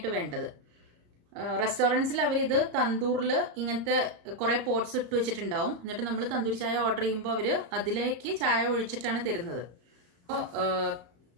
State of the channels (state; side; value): late; left; 34 ms